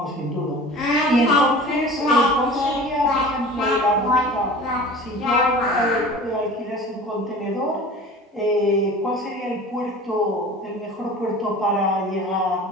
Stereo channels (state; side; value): normal; both; correlation 0.40